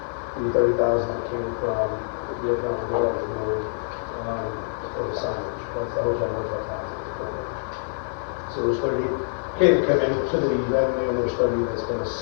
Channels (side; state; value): right; silent; 62 dB below the other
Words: the 30,000 that came from the economic development board, for the signage, that's the hotel motel tax. So there's 30K to come into the revenue, and there's 30 that's been